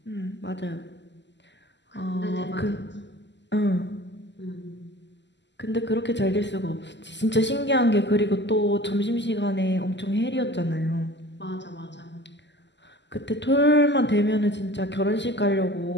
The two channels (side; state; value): right; late; 0.51 ms